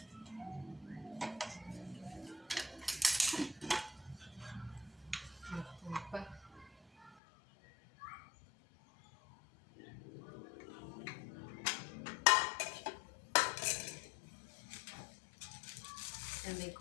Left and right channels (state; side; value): drops out; right; at 7.2 s